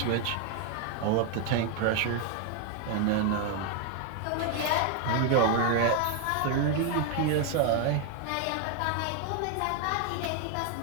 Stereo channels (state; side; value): different; both; correlation 0.01